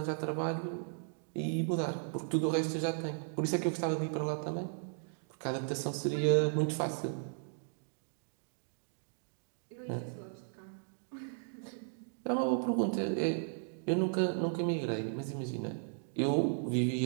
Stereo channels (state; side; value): silent; left; digital silence